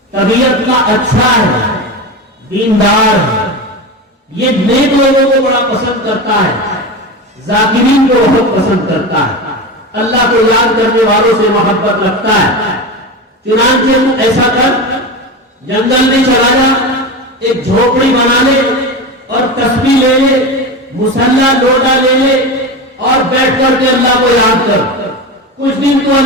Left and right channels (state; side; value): normal; both; correlation 0.23